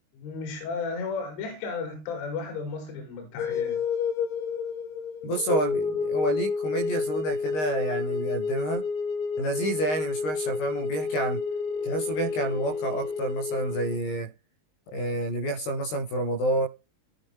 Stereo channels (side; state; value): right; late; 19 ms